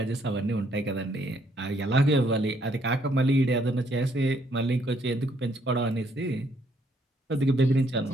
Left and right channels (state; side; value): normal; both; correlation 0.69